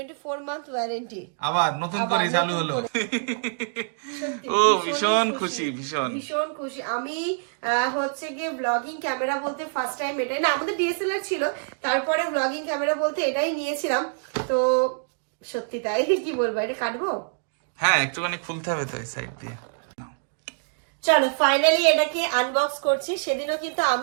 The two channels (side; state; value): left; silent; digital silence